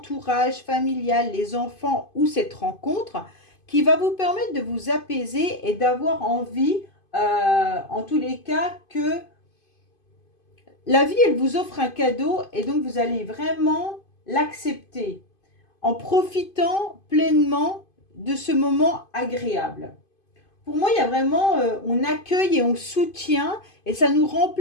familial, les enfants ou cette rencontre qui va vous permettre de vous apaiser et d'avoir envie, en tous les cas, que la vie, elle vous offre un cadeau et donc vous allez vraiment l'accepter en profitant pleinement de ce moment agréable. Pour moi, il y a vraiment, on accueille et on soutient et ça nous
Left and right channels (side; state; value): right; late; 2.5 ms